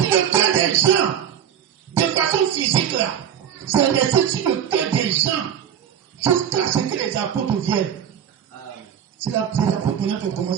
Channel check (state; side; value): quieter; left; 9.2 dB